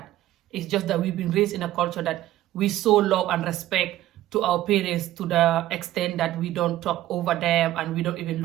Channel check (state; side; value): quieter; left; 14.4 dB